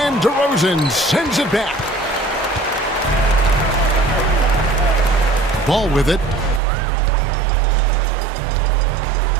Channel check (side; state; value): left; drops out; at 6.6 s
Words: DeRozan sends it back. Ball with it.